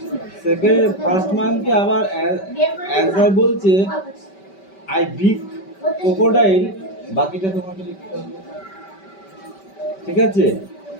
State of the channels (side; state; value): right; late; 5.2 ms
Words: সেকেন্ড ফার্স্ট মাঙ্কি আবার অ্যান্সার বলছে আই বিগ ক্রোকোডাইল, বাকিটা তোমাকে লিখতে হবে। ঠিক আছে,